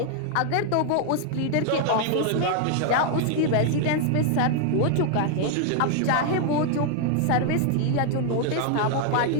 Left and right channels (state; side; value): different; both; correlation 0.00